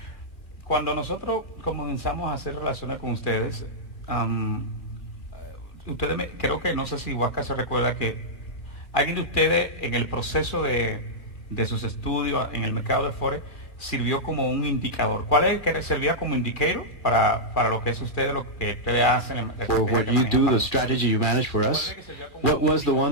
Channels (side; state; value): right; late; 2.3 ms